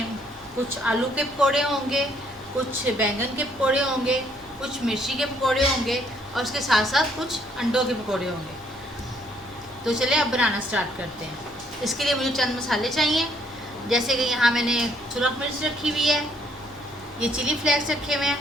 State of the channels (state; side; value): noise; right; hum, 26 dB below the sound